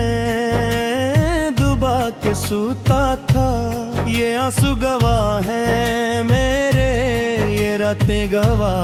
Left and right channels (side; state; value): both; identical; correlation 1.00